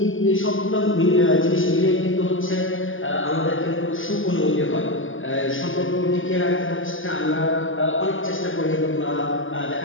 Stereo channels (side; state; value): right; late; 0.58 ms